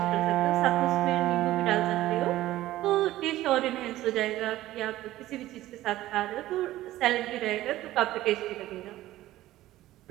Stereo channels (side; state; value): left; quieter; 15.4 dB